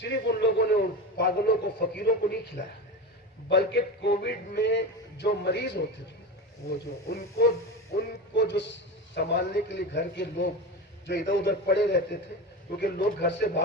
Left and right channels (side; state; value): both; normal; correlation 0.23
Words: ان لوگوں نے ان پاگلوں کو، فقیروں کو نہیں کھلایا، بلکہ کووڈ میں جو مریض ہوتے تھے، وہ جو ان کو جو سنبھالنے کے لیے گھر کے لوگ جو ادھر ادھر پڑے رہتے تھے، کیونکہ لوگ گھر سے